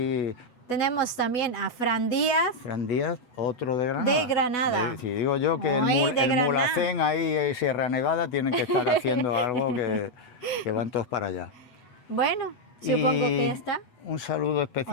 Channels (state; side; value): late; right; 8.1 ms